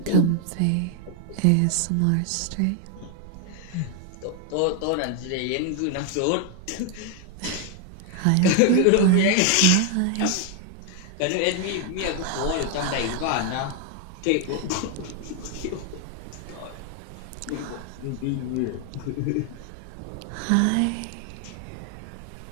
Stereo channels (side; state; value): both; different; correlation 0.00